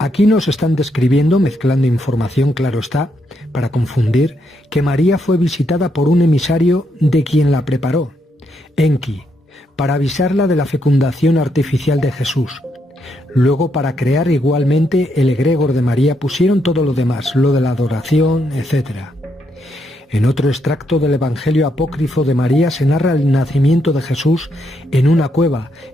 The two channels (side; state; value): both; normal; correlation 0.78